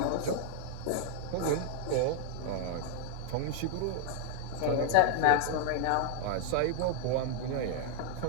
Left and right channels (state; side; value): different; both; correlation 0.00